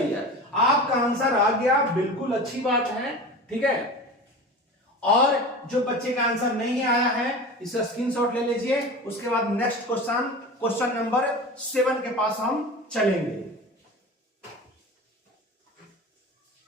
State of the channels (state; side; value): normal; both; correlation 0.33